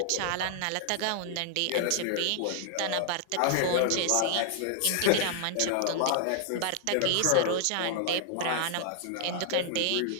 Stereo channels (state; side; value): different; both; correlation 0.00